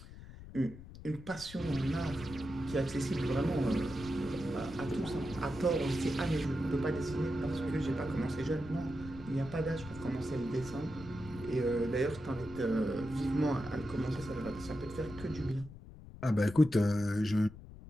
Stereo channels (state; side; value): noise; left; rumble, 15 dB below the sound